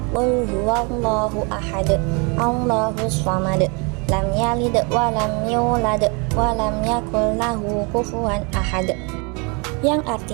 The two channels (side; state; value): left; quieter; 32.2 dB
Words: Qul huwallahu ahad, Allahus samad, lam yalid wa lam yulad wa lam yakul lahu kufuwan ahad. Yang